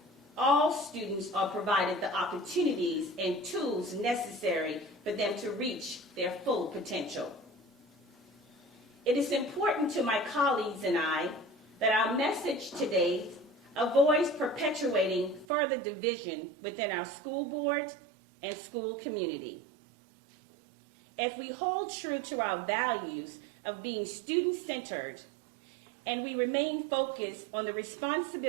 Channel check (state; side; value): drops out; left; at 15.5 s